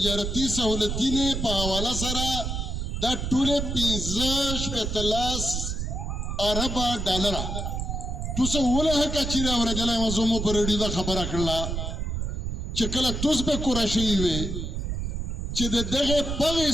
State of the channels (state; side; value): noise; right; rumble, 3 dB below the sound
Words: سهولتینې په حواله سره دا ټولې 15 اربه ډالر توسه وله کچیره ورغله مزمو پر دې دا خبره کړله چې کله توس به قرشي وي چې دغه پغې